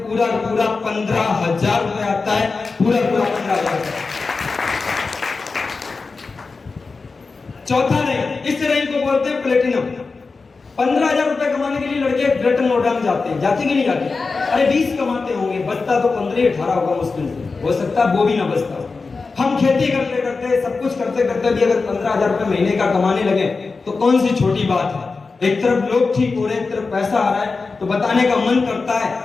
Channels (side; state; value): right; quieter; 4.2 dB